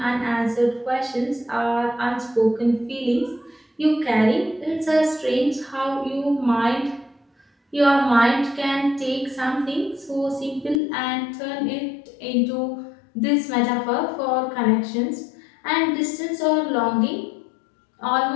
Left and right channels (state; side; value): drops out; right; at 10.8 s